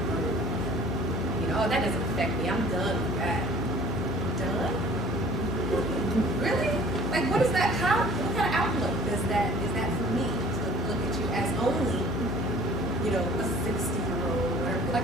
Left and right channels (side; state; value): both; normal; correlation 0.49